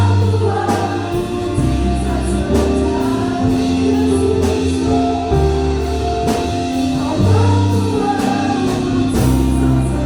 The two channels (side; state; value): both; identical; correlation 1.00